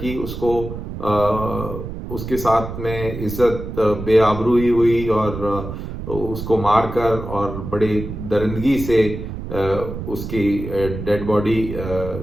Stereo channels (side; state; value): right; noise; rumble, 8 dB below the sound